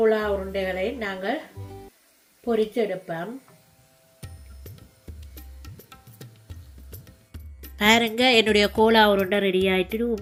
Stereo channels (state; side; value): identical; both; correlation 1.00